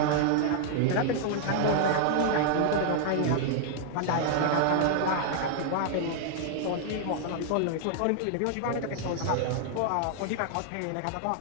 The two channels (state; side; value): different; both; correlation 0.00